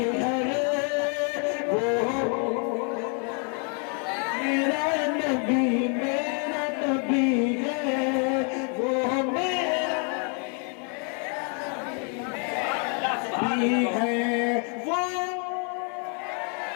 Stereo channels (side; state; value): right; quieter; 39.7 dB